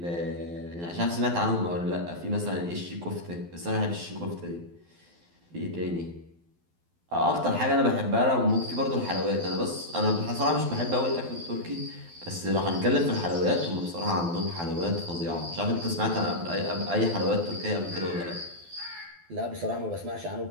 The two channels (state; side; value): late; left; 12 ms